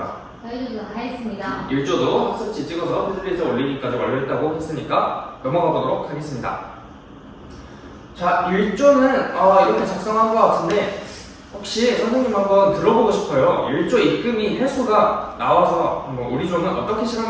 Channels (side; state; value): both; identical; correlation 1.00